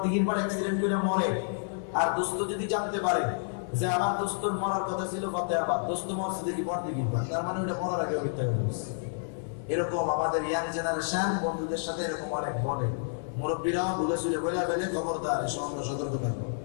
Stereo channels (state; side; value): silent; right; digital silence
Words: পার অ্যাক্সিডেন্ট করে মরে, আর দোস্ত যদি জানতে পারে যে আমার দোস্তর মরার কথা ছিল কতে আবার, দোস্ত মরছে দেখি বড়দিঘির পার, তার মানে ওটা মরার আগে মিথ্যা বলছে। এরকম আমাদের ইয়াং জেনারেশন বন্ধুদের সাথে এরকম অনেক বলে, মুরব্বীরাও ভুলে শুলে বলে ফেলে, খবরদার, এসব আমরা সতর্ক থাকবো।